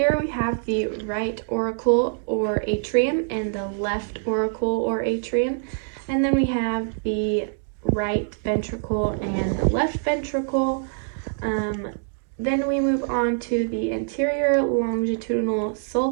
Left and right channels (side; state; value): left; silent; digital silence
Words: we have the right auricle or atrium and the left auricle or atrium. And then we have the right ventricle and left ventricle. Then we move on to the anterior longitudinal